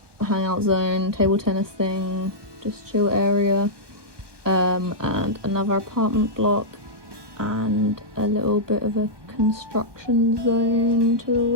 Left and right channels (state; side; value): late; left; 1.1 ms